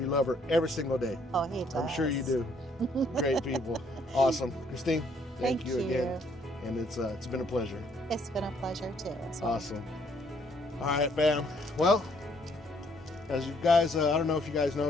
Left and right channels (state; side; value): normal; both; correlation 0.67